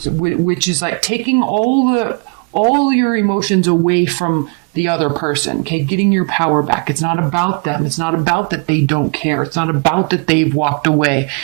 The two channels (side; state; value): left; quieter; 35.4 dB